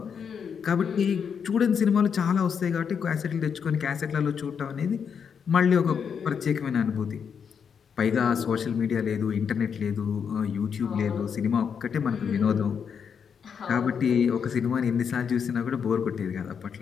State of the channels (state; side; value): quieter; right; 6.9 dB